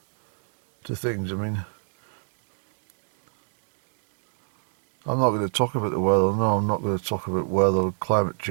things. I mean, I'm not going to talk about the weather. No, I'm not going to talk about weather, climate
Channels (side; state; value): left; silent; digital silence